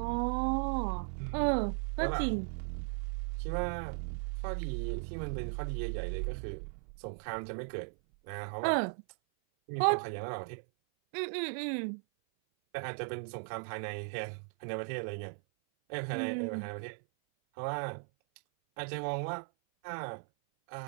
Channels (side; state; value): left; silent; 53 dB below the other